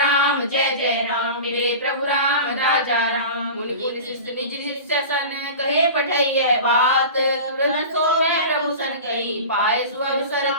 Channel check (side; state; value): both; inverted; correlation -0.33